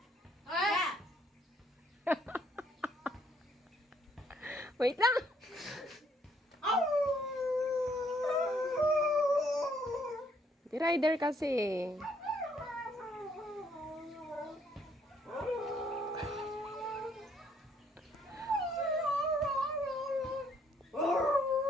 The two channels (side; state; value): both; normal; correlation 0.68